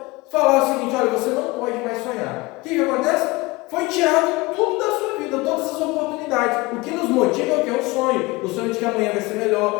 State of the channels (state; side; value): quieter; right; 22.6 dB